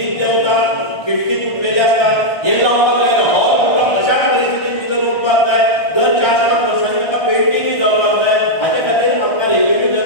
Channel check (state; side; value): late; right; 1.3 ms